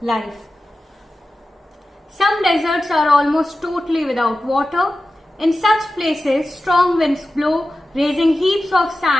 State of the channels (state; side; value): normal; both; correlation 0.94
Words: life. Some deserts are almost totally without water. In such places, strong winds blow, raising heaps of